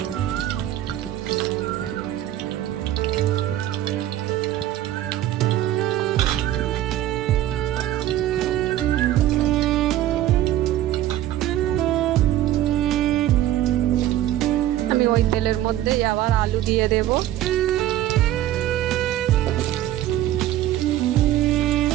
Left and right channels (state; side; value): quieter; left; 13.3 dB